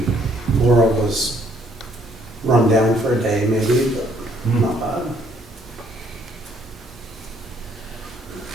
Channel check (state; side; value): normal; both; correlation 0.65